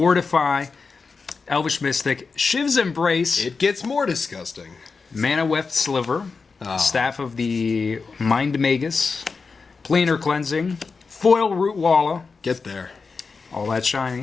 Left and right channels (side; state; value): right; quieter; 4.7 dB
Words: Elvish Mystic, Shiv's Embrace. It gets more disgusting. Mana Weft Sliver, Staff of the Mind Magus, Planar Cleansing, Foil Root Walla. Get there. All that